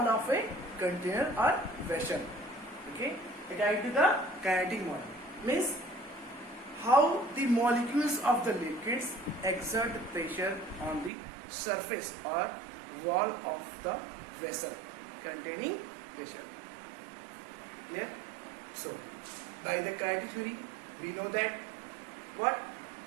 of a container or vessel. Okay, according to the kinetic model, means how the molecules of the liquids exert pressure on the surface or wall of the vessel containing pressure. Clear? So, by the kinetic theory, we know that what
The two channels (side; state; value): left; drops out; at 11.1 s